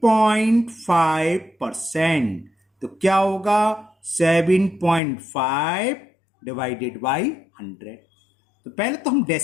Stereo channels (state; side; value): drops out; right; at 5.0 s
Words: तो क्या होगा? 7.5 डिवाइडेड बाई 100। तो पहले तो हम